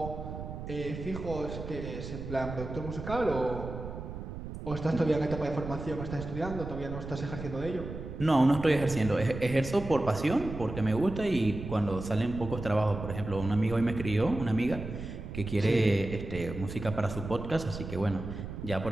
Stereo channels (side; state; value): right; noise; rumble, 8 dB below the sound